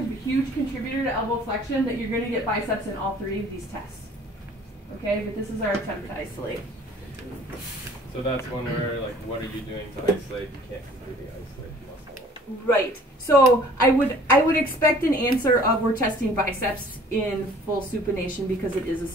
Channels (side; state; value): both; normal; correlation 0.52